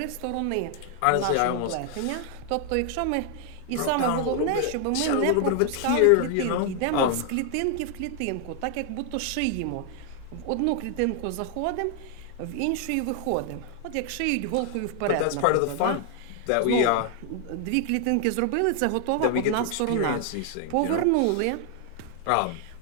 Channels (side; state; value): both; different; correlation 0.00